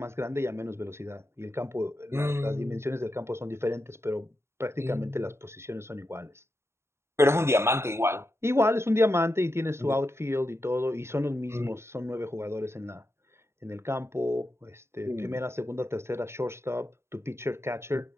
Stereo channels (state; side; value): late; left; 0.13 ms